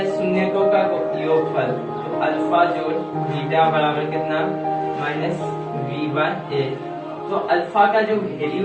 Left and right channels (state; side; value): identical; both; correlation 1.00